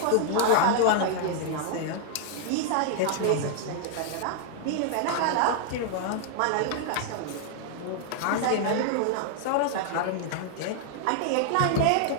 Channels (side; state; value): both; different; correlation 0.00